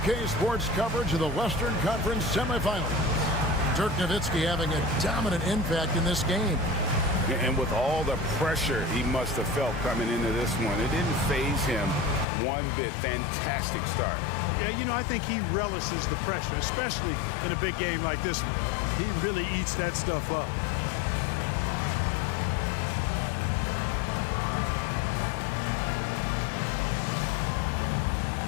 Sports coverage of the Western Conference semifinals. Dirk Nowitzki having a dominant impact in this game. And with all the pressure he must have felt coming into this one, it didn't faze him one bit. Fantastic start. Yeah, you know, I think he relishes the pressure, especially in a big game like this one. He really eats that stuff up.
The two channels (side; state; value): right; drops out; at 12.2 s